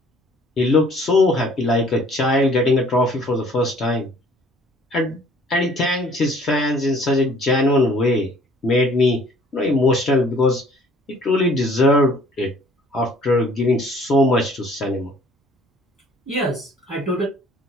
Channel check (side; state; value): both; normal; correlation 0.56